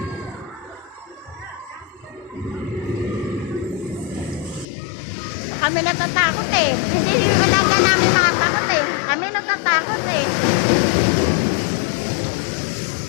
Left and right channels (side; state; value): right; drops out; at 4.7 s